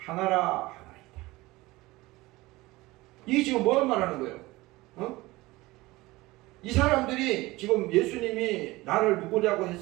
이게 지금 뭘 말하는 거예요? 이 사람들이 지금 예수님이 나를 누구냐고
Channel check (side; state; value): left; quieter; 20.2 dB